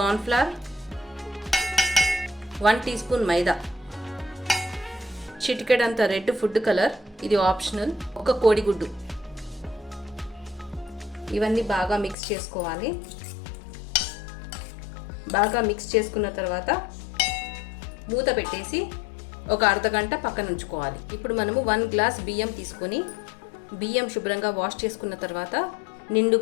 flour, 1 teaspoon maida, చిటికెడంత రెడ్ ఫుడ్ కలర్, ఇది ఆప్షనల్, ఒక కోడిగుడ్డు. ఇవన్నీ బాగా మిక్స్ చేసుకోవాలి. బాగా మిక్స్ చేసుకున్న తర్వాత మూత పెట్టేసి ఒక అర్ధగంట పక్కన ఉంచుకోవాలి. ఇప్పుడు మనము 1 గ్లాస్ బియ్యం తీసుకొని బియ్యం శుభ్రంగా వాష్ చేసుకున్న తర్వాత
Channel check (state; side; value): drops out; right; at 12.2 s